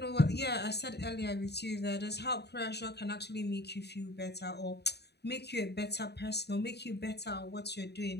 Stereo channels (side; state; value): right; late; 0.48 ms